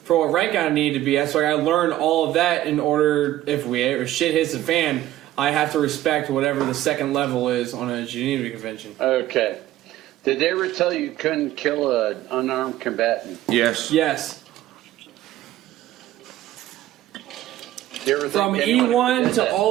for what rank I need to be at. So I got to learn all of that in order, if shit hits the fan, I have to respect whatever the second level is on a Geneva Convention. Okay. Did they ever tell you couldn't kill an unarmed combatant? Yes. Yes. From E1 to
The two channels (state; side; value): quieter; left; 14.1 dB